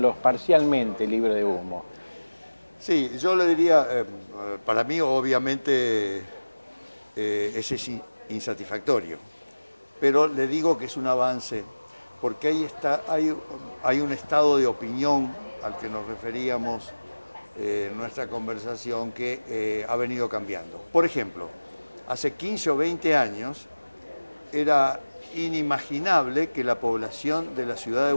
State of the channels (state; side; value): inverted; both; correlation -1.00